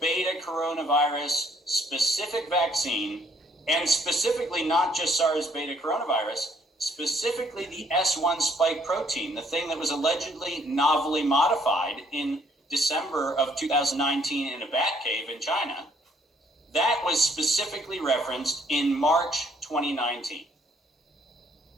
coronavirus specific vaccine, and specifically not just SARS beta coronavirus, specifically the S1 spike protein, the thing that was allegedly novelly modified in December of 2019 in a bat cave in China, that was specifically referenced in March 2019.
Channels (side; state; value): both; normal; correlation 0.65